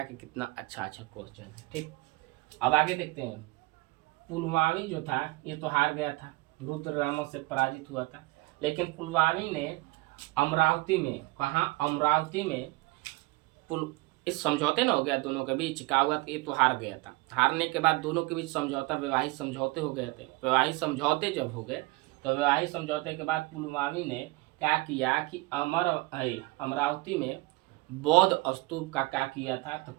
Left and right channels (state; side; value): quieter; left; 22.5 dB